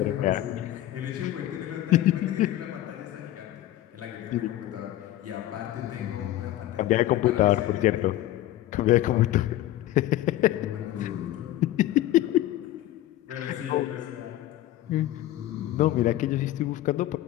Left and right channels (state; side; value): quieter; right; 14.4 dB